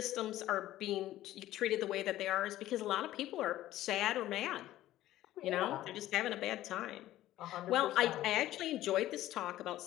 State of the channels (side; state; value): right; quieter; 14.5 dB